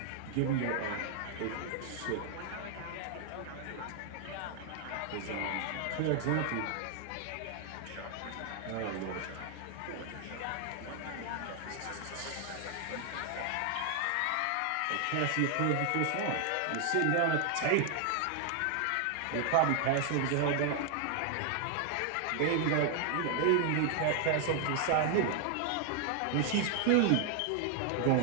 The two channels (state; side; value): different; both; correlation 0.00